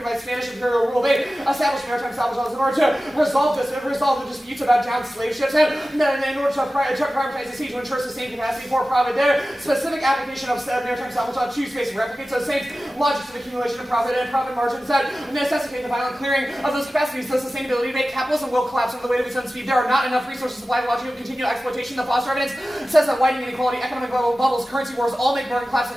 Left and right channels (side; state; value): both; normal; correlation 0.95